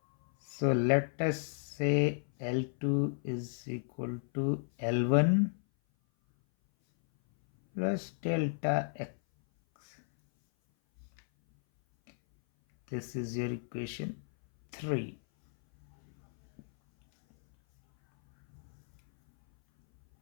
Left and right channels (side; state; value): right; silent; 56 dB below the other